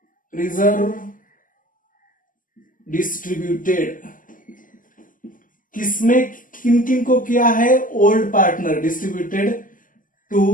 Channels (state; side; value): late; right; 0.39 ms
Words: रिजर्व डिस्ट्रीब्यूटेड। किसमें किन किन को किया है? Old partner, distributed